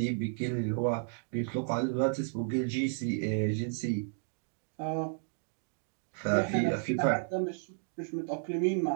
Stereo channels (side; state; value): left; silent; digital silence